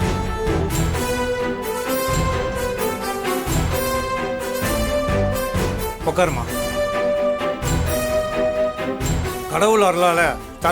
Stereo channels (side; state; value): both; identical; correlation 1.00